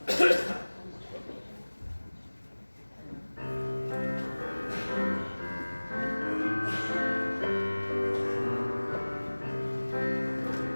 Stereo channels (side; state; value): both; inverted; correlation -1.00